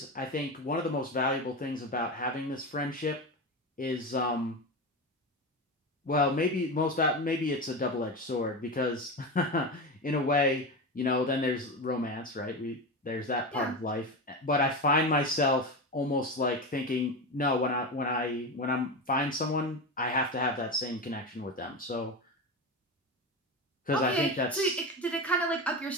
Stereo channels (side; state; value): both; normal; correlation 0.21